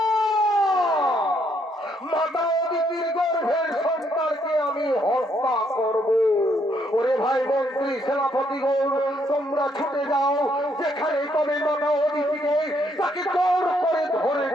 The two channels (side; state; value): both; normal; correlation 0.72